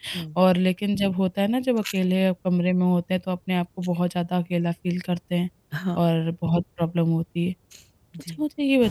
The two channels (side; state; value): both; identical; correlation 1.00